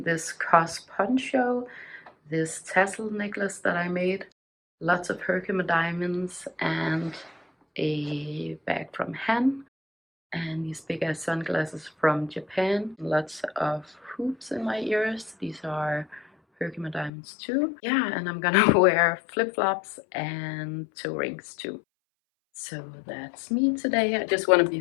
this cos poncho, this tassel necklace that I made, lots of Herkimer diamonds, and a bag from Han, and these big ass sunglasses from Japan, lots of hoops in my ears. These are Herkimer diamonds too. Yeah, and I'm gonna wear flip-flops and toe rings too. So that's me today. I just want to be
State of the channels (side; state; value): right; drops out; at 17.1 s